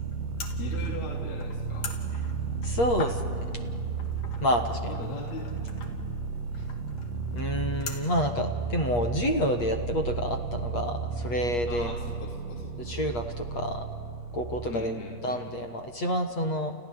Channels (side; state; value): right; late; 8.8 ms